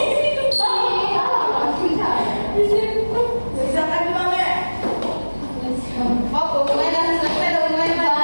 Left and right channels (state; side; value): inverted; both; correlation -1.00